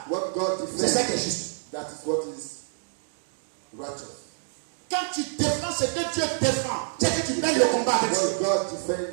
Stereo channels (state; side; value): silent; left; digital silence